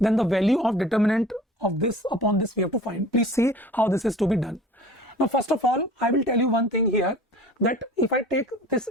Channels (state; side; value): normal; both; correlation 0.44